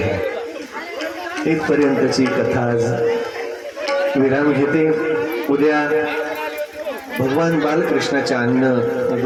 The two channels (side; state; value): both; identical; correlation 1.00